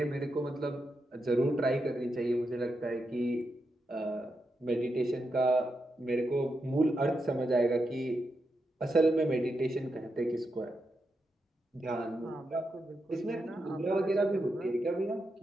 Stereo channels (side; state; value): both; normal; correlation 0.85